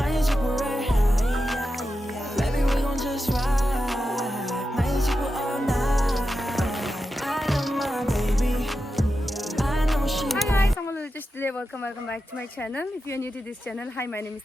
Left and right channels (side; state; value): both; normal; correlation 0.90